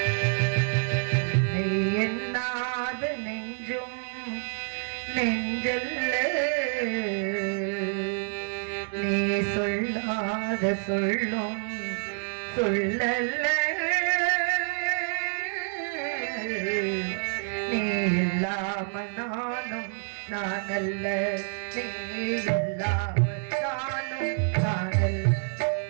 உன்னை எண்ணாத நெஞ்சும் நெஞ்சல்ல, நீ சொல்லாத சொல்லும் சொல்லல்ல, நீ இல்லாம நானும் நானல்ல, நீ இல்லாம நானும் நானல்ல.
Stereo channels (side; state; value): left; silent; 56 dB below the other